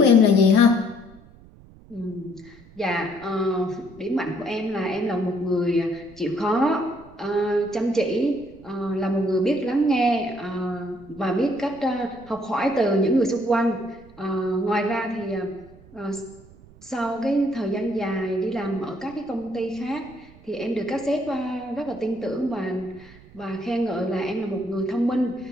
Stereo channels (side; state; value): right; noise; rumble, 23 dB below the sound